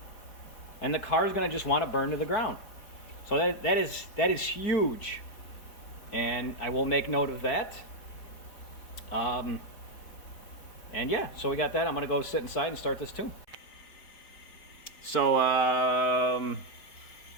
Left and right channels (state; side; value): late; right; 4.6 ms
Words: and the car is going to just want to burn to the ground. So that is huge, and I will make note of that. And yeah, so we got that. I'm going to go sit inside and start this tune. So